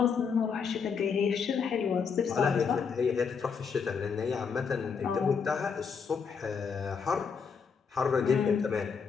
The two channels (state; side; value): quieter; right; 6.0 dB